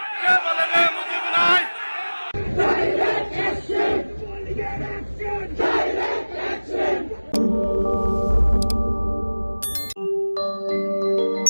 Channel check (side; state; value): both; inverted; correlation -1.00